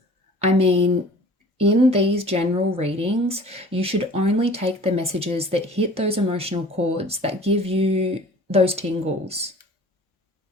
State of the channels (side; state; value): both; normal; correlation 0.46